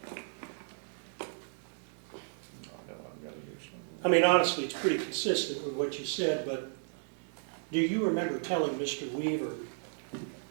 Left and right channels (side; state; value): left; silent; digital silence